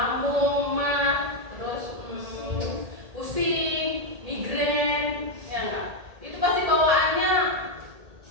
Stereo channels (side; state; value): left; late; 1.8 ms